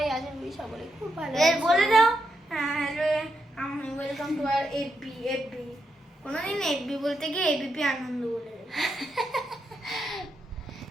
আশা করি সকলে খুব ভালো এর আছো। বলে দাও। হ্যালো, আমি ওয়েলকাম টু আর এফবি। কোনোদিন এফবি বলতে গিয়ে এবিপি আনন্দ বলে দেবে।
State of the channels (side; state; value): both; normal; correlation 0.82